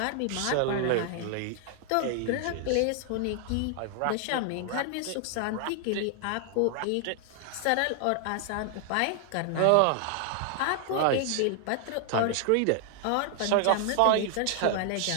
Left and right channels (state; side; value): different; both; correlation 0.00